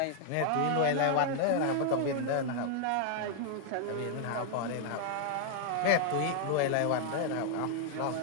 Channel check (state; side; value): different; both; correlation -0.01